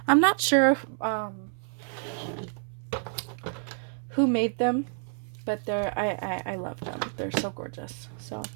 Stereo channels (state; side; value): silent; left; 59 dB below the other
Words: I'm not sure who made them, but I love them. They're so gorgeous. So